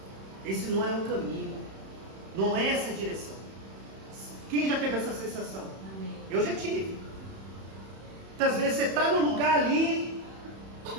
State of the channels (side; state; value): left; late; 31 ms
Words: Esse não é o caminho. Não é essa a direção. Quem já teve essa sensação? Amém. Eu já tive. Muitas vezes você está no lugar ali